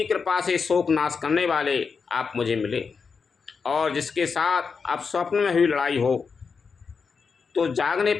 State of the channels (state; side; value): quieter; right; 5.4 dB